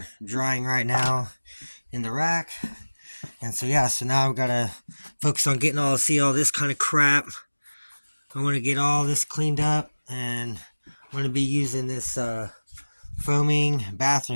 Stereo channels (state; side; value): inverted; both; correlation -1.00